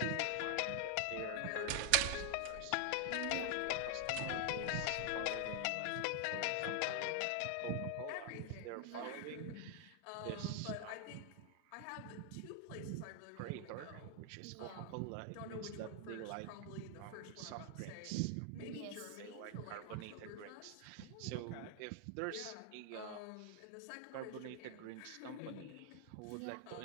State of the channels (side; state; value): both; different; correlation 0.00